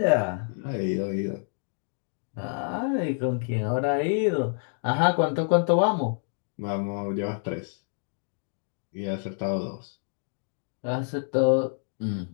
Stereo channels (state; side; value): silent; right; digital silence